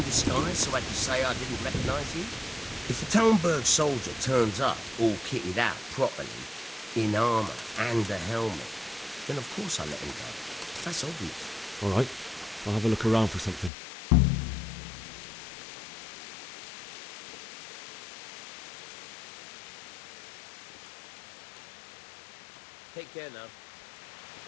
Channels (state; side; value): drops out; right; at 13.7 s